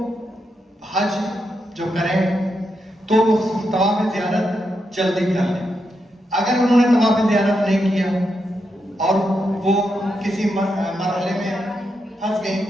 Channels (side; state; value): both; normal; correlation 0.84